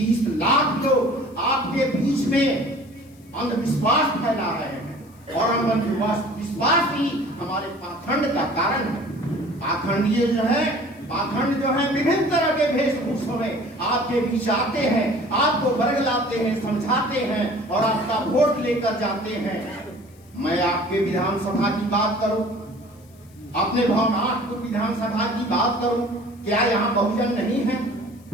लाख लोग आपके बीच में अंधविश्वास फैला रहे हैं और अंधविश्वास ही हमारे पाखंड का कारण है। पाखंडीय जो है, पाखंड जो है विभिन्न तरह के वेशभूषों में आपके बीच आते हैं, आपको बरगलाते हैं, समझाते हैं और आपका वोट लेकर जाते हैं। मैं आपके विधानसभा की बात करूं, अपने भवनाथ विधानसभा की बात करूं, क्या यहाँ बहुजन नहीं है?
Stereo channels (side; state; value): left; noise; hiss, 29 dB below the sound